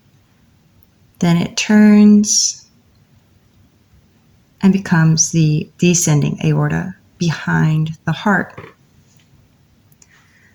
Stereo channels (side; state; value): both; identical; correlation 1.00